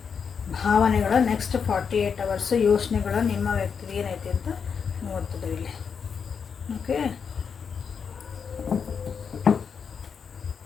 ಭಾವನೆಗಳು ನೆಕ್ಸ್ಟ್ 48 ಅವರ್ಸು, ಯೋಚನೆಗಳು ನಿಮ್ಮ ವ್ಯಕ್ತಿಗೆ ಏನೈತಿ ಅಂತ ನೋಡ್ತಿದ್ದೀವಿ ಇಲ್ಲಿ. Okay,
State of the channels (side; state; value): right; quieter; 6.4 dB